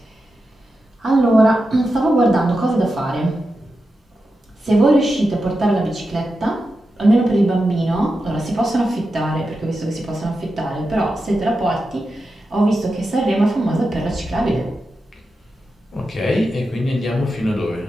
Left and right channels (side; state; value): both; normal; correlation 0.90